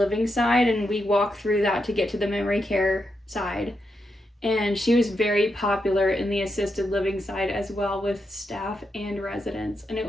side, and we walk through that to get to the memory care side. And she was very popular in the assisted living side as well, with staff and residents, and it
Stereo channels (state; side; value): normal; both; correlation 0.84